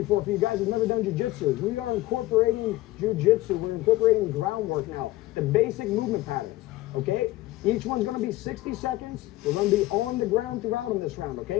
for you guys who've never done jiu-jitsu. We are incorporating jiu-jitsu. We're incorporating groundwork now, the basic movement patterns, okay? Each one's gonna be 60 seconds. We're gonna be on the ground throughout in this round,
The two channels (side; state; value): right; quieter; 17.6 dB